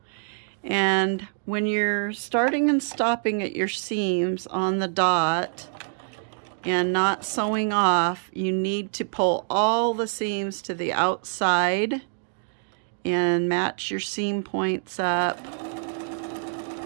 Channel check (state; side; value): silent; left; digital silence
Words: And when you're starting and stopping at your seams on the dot and not sewing off, you need to pull all the seams to the outside and match your seam points up